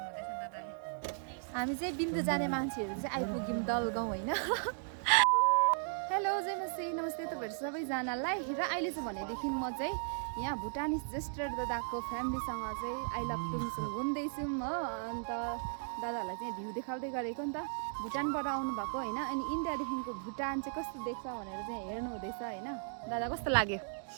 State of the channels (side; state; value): left; silent; digital silence